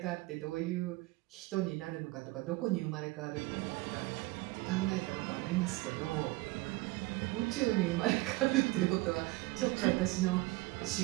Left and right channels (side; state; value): left; quieter; 21.5 dB